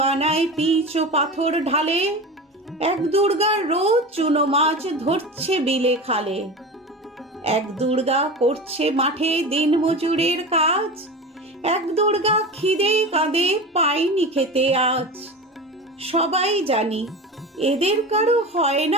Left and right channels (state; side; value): normal; both; correlation 0.29